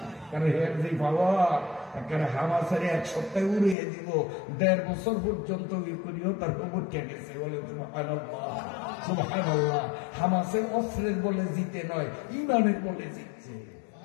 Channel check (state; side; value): drops out; right; at 3.8 s